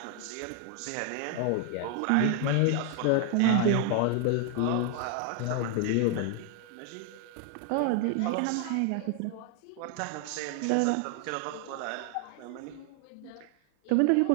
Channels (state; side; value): different; both; correlation 0.00